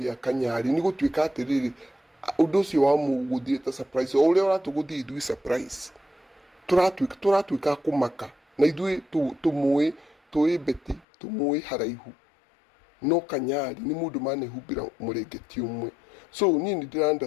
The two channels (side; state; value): right; drops out; at 11.0 s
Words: Kanyari nĩ gũtuĩka atĩrĩrĩ, ũndũ ũcio wa mũgũthire ta surprise, o ũrĩa ũratũgũthia ithuĩ surprise, tũratuĩka kũmaka na ithuĩ tũĩ Beti, tũmũĩ haraihu, no Kanyari nĩ mũndũ manehumbĩra mũrengeti ũmwe. So niĩ nĩ ndĩra